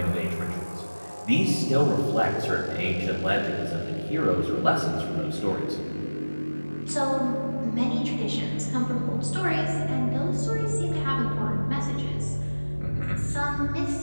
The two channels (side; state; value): both; inverted; correlation -1.00